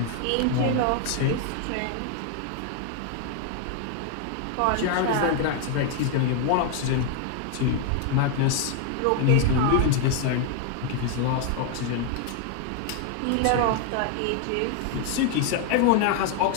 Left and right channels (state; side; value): different; both; correlation 0.00